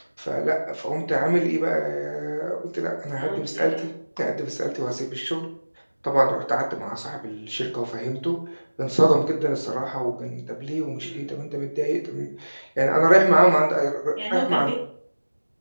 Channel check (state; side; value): inverted; both; correlation -1.00